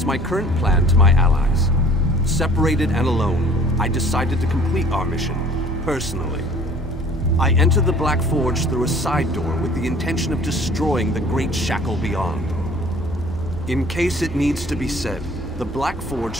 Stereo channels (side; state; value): both; normal; correlation 0.51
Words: my current plan to my allies. Separated and alone, I decided to complete our mission, personally. I entered the Black Forge through a side door with the intention of destroying the Great Shackle beyond. In case it needs to be said, the Black